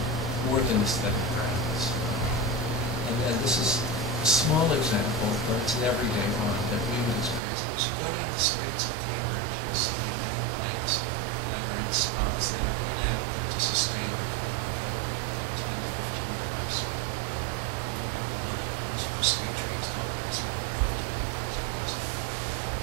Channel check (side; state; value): left; drops out; at 7.4 s